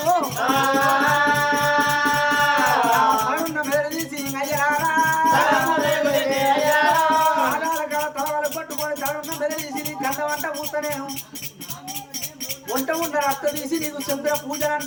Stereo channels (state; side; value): identical; both; correlation 1.00